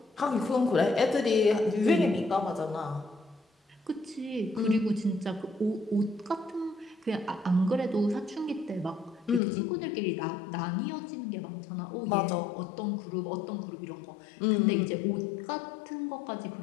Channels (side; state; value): right; drops out; at 9.4 s